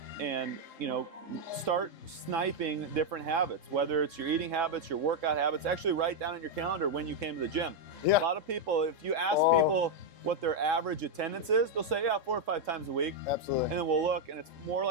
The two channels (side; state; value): left; late; 3.7 ms